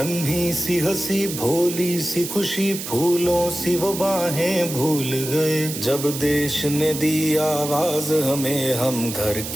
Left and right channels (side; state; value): right; noise; hiss, 7 dB below the sound